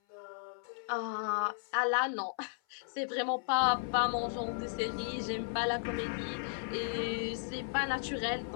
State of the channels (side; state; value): right; silent; 55 dB below the other